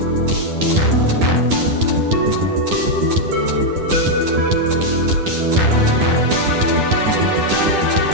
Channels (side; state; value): left; late; 10 ms